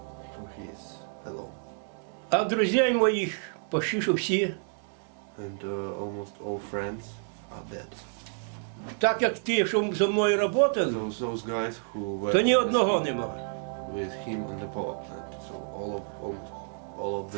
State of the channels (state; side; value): silent; left; 58 dB below the other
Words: So he is alone. А друзей моїх почти що всі. And almost all friends are dead. Так як ті, що зі мною працювали, Those guys who were то ні одного нема. with him on the power plant. So almost all of